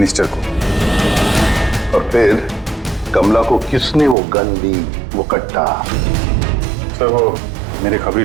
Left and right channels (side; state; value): left; drops out; at 4.2 s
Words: को? और फिर कमला को किसने वो गन दी, वो कट्टा? सर वो मेरे खबरी